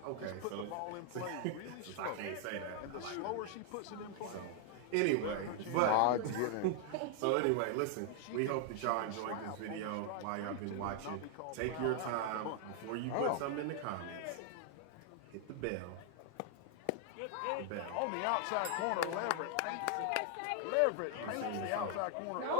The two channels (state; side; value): different; both; correlation 0.00